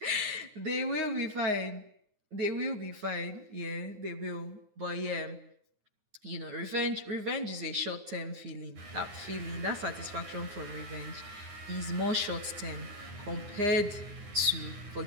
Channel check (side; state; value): left; late; 9.6 ms